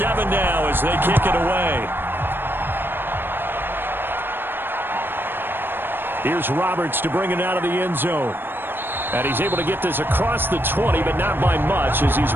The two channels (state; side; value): late; left; 0.099 ms